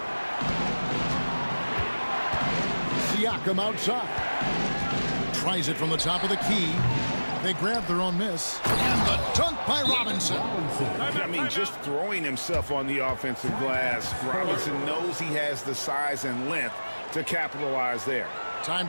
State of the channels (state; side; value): inverted; both; correlation -1.00